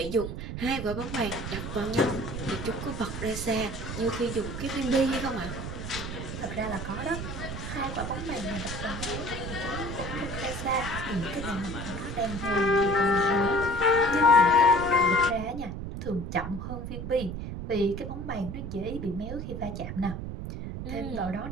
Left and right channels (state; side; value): noise; right; rumble, 6 dB below the sound